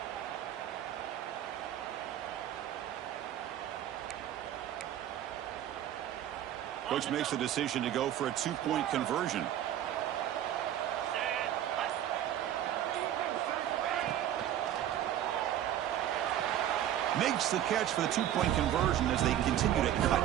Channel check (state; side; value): quieter; left; 11.4 dB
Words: Coach makes the decision to go for a 2-point conversion. Makes the catch for the 2-point conversion as they continue to